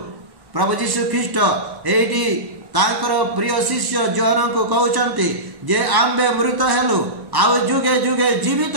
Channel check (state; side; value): late; left; 1.0 ms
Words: प्रभु जीशु ख्रीष्ट एठी तांकर प्रिय शिष्य जोहन को कहउचंती जे आम्बे मृत हेलु आउ जुगे जुगे जीवित